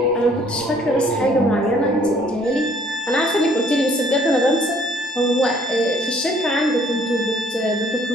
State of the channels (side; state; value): both; normal; correlation 0.60